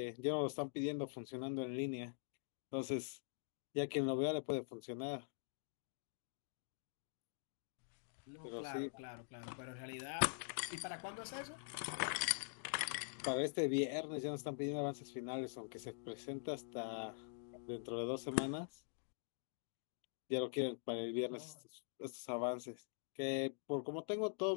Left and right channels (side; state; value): right; silent; digital silence